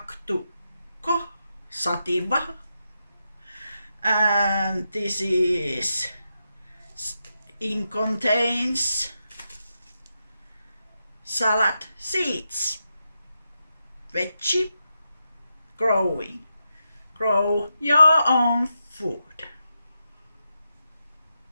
sativa, and this is contains salad seeds. Veggie growing. Grow your own food.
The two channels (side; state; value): both; inverted; correlation -0.86